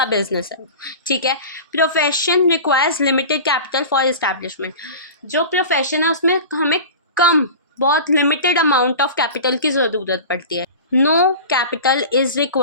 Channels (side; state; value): both; inverted; correlation -0.34